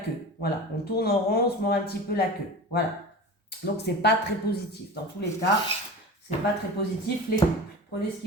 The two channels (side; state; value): both; normal; correlation 0.33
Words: Voilà, on tourne en rond, on se mord un petit peu la queue. Voilà. Donc c'est pas très positif. Dans tous les cas, c'est pas très positif les couples. Prenez ce